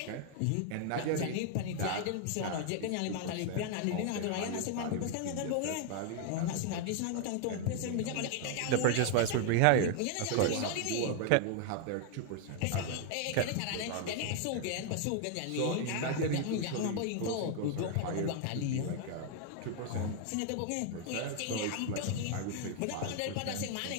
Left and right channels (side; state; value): both; different; correlation 0.00